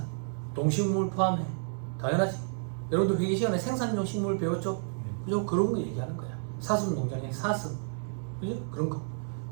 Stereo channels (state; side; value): silent; left; digital silence